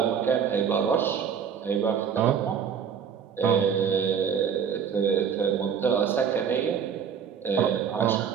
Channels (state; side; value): quieter; left; 7.4 dB